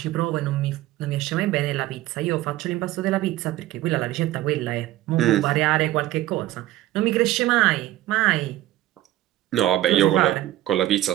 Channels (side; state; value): left; quieter; 15.0 dB